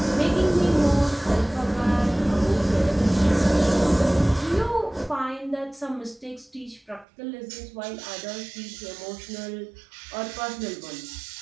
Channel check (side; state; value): left; drops out; at 7.1 s